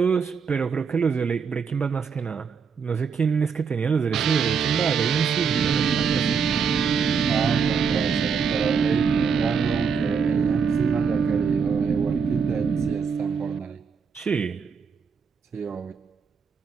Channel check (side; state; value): left; quieter; 6.1 dB